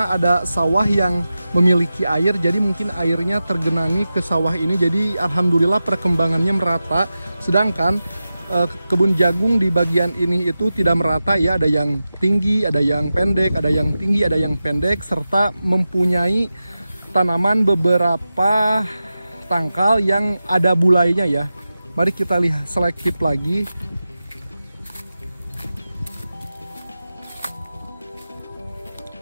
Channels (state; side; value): inverted; both; correlation -0.93